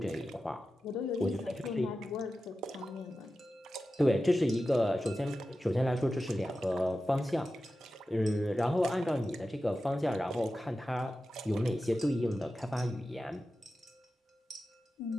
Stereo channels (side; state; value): both; normal; correlation 0.93